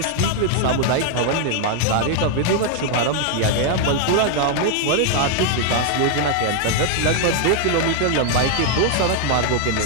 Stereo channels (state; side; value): different; both; correlation 0.00